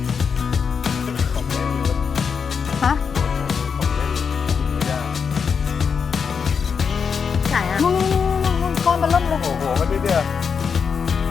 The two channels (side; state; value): right; quieter; 6.2 dB